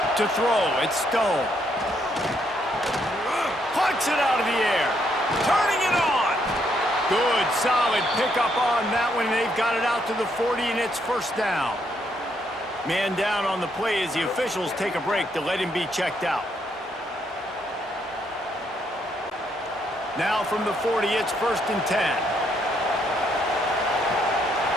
To throw, it's Stone. Plucks it out of the air. Turning it on. Good, solid pickup on that one. They've got it out to the 40, and it's first down. Man down on the play as the officials take a break to let him be checked out. Now from the 40, it's 1st and 10.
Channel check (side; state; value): both; normal; correlation 0.74